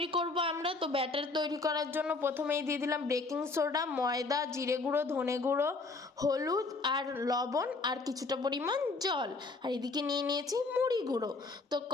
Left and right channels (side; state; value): right; quieter; 3.7 dB